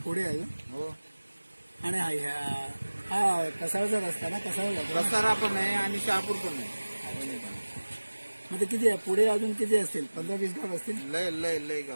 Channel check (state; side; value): inverted; both; correlation -1.00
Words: पुढे अजून. हो. आणि हा कसाळचा रस्ता ना, कसाळ जातो. रस्तारा पण आहे आणि शहापूर पण आहे. मग ते किती आहे पुढे? अजून किती असतील? 15-20 गाव असतील. लय लय लय